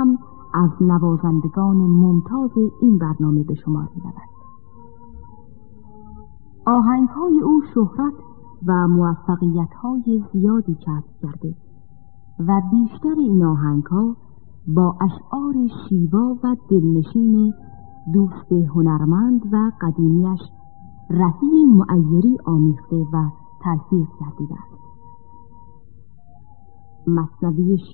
از نوازندگان ممتاز این برنامه به شمار می‌رود. آهنگ‌های او شهرت و موفقیت‌های زیادی کسب کرده و بیشتر این آهنگ‌ها با اشعار شیوا و دلنشین دوست هنرمند و قدیمیش رهی معیری آمیخته و تلفیق کرده است. مثنوی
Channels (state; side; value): silent; right; 68 dB below the other